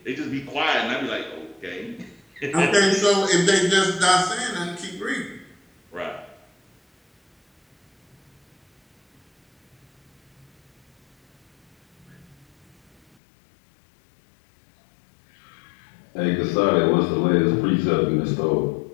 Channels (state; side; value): drops out; right; at 13.2 s